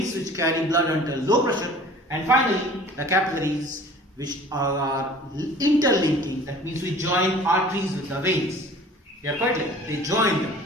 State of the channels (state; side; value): normal; both; correlation 0.46